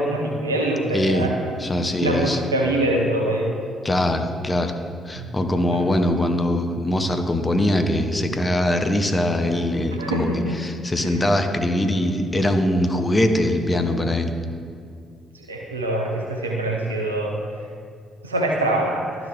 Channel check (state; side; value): normal; both; correlation 0.69